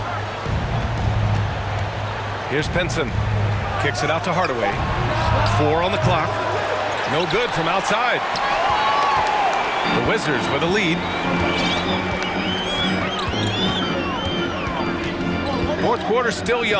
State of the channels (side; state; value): both; identical; correlation 1.00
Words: Here's Pinson. Kicks it out to Hardaway. 4 on the clock. No good from outside. The Wizards with a lead. 4th quarter still